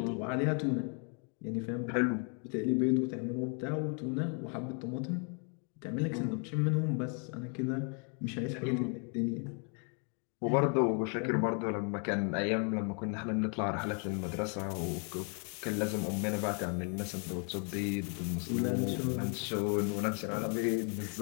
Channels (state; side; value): quieter; right; 39.8 dB